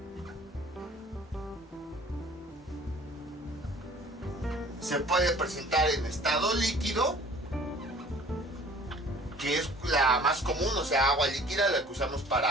Se puede presentar en estado líquido, que es la más común, o sea, agua líquida, la que usamos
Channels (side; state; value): both; normal; correlation 0.50